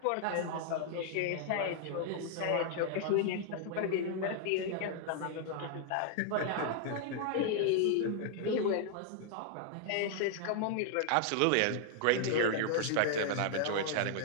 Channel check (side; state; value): both; different; correlation -0.01